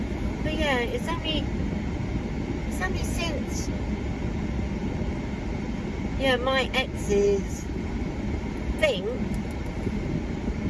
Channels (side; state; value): both; identical; correlation 1.00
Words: But yeah, it's only since my ex's thing